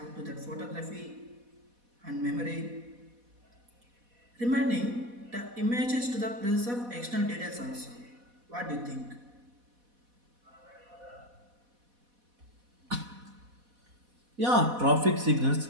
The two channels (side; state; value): left; late; 4.1 ms